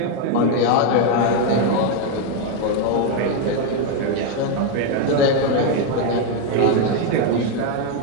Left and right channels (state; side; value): different; both; correlation 0.02